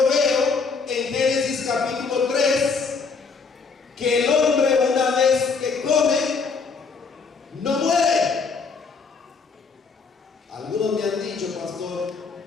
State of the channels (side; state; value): right; quieter; 4.9 dB